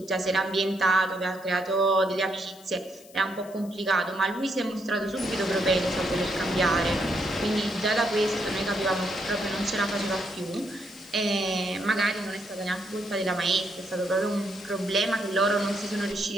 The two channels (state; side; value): noise; left; hiss, 23 dB below the sound